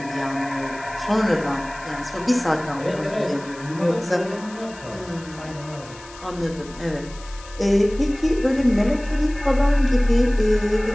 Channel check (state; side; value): noise; left; hiss, 20 dB below the sound